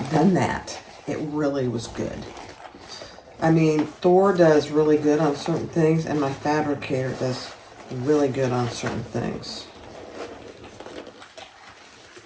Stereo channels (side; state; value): both; identical; correlation 1.00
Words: done that. It really was good. I mean, Thor does really good on certain things, and my fabricator does really good on certain things.